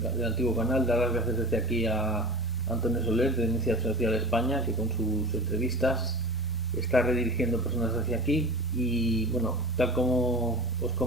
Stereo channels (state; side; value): normal; both; correlation 0.35